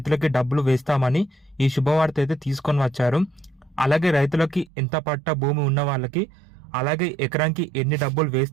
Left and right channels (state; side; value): drops out; left; at 4.7 s